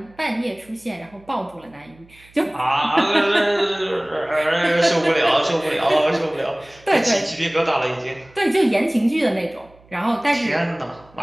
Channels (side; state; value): right; noise; hum, 28 dB below the sound